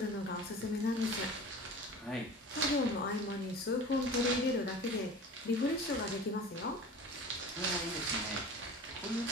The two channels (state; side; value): normal; both; correlation 0.38